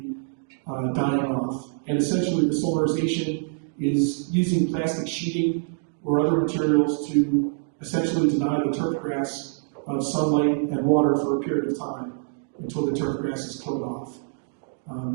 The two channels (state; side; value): silent; left; digital silence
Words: dying off. And essentially the solarization is using plastic sheeting or other materials to essentially deny the turf grass sunlight and water for a period of time until the turf grass is killed off,